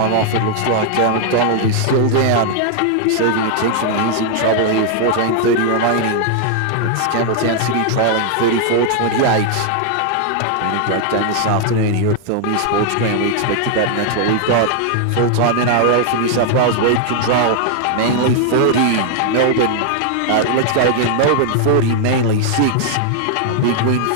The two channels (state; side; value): different; both; correlation 0.00